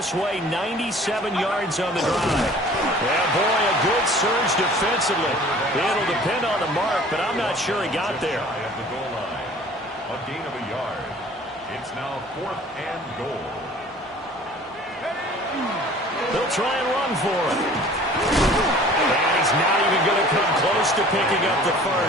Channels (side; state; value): both; normal; correlation 0.48